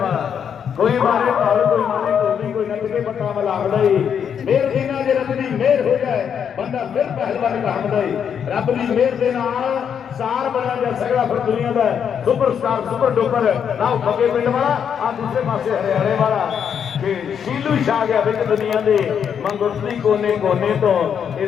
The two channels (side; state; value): right; quieter; 7.8 dB